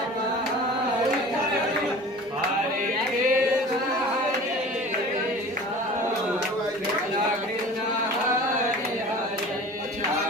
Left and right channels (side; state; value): both; normal; correlation 0.41